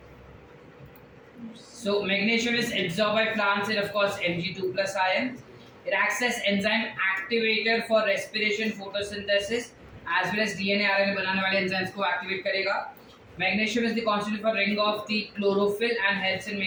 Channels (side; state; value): both; identical; correlation 1.00